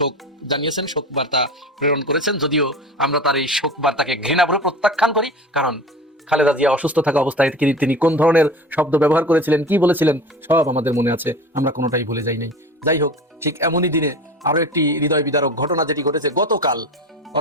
জানিয়েছেন, শোক বার্তা প্রেরণ করেছেন। যদিও আমরা তার এই শোক বার্তাকে ঘৃণাভরে প্রত্যাখ্যান করি, কারণ খালেদা জিয়া অসুস্থ থাকা অবস্থায় তিনি কোন ধরনের শব্দ ব্যবহার করেছিলেন, কি বলেছিলেন, সব আমাদের মনে আছে, আমরা কোনোটাই ভুলে যাই নাই। যাই হোক, ঠিক এমনই দিনে আরো একটি হৃদয় বিদারক ঘটনা যেটি ঘটেছে গতকাল,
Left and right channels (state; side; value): normal; both; correlation 0.34